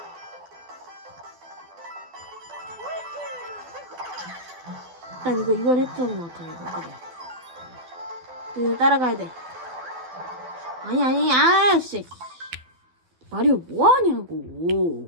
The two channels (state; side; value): late; left; 12 ms